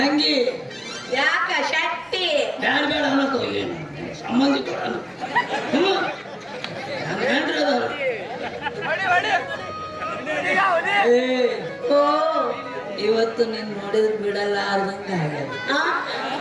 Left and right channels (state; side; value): identical; both; correlation 1.00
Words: ಯಾಕ ಶಕ್ತಿ ಬ್ಯಾಡ ಬೇಡ ಅನ್ನೋ ಏನು ಸಂಬಂಧಿಕ ಇವತ್ತು ನೀನ್ ನೋಡಿದ್ರೆ ಬಿಡಲ್ಲ ಅರ್ಧಂಗ ಆಗ್ಯದ.